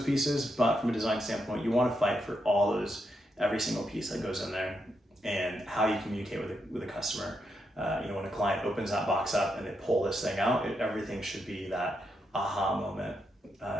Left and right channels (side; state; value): both; normal; correlation 0.82